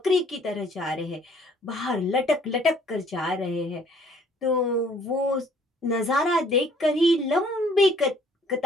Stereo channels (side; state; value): both; normal; correlation 0.59